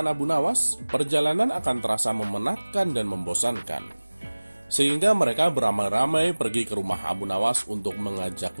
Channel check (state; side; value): inverted; both; correlation -1.00